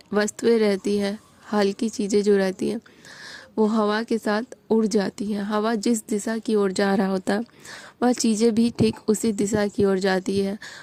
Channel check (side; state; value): both; identical; correlation 1.00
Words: रहती है, हल्की चीज़ें जो रहती हैं, वो हवा के साथ उड़ जाती हैं। हवा जिस दिशा की ओर जा रहा होता है, वह चीज़ें भी ठीक उसी दिशा की ओर जाती है,